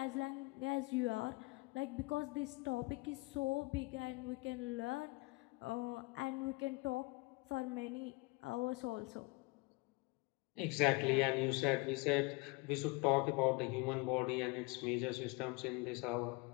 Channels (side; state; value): right; quieter; 26.2 dB